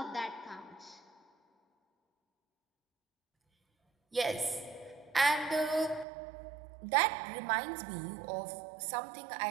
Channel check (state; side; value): drops out; left; at 6.1 s